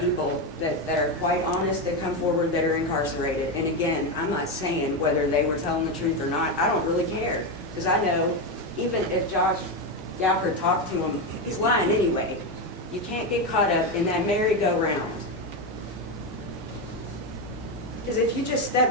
that are quite honest that come forward that are incarcerated. And again, I'm not saying whether they were telling the truth or not. I don't really care. Because I know even if Josh Gowker talked to him, he's lying anyway. You can't get caught up in that merry-go-round. Because if you just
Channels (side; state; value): both; normal; correlation 0.11